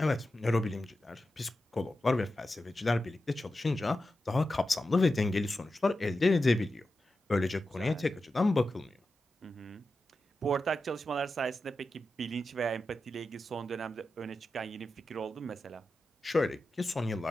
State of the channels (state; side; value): normal; both; correlation 0.91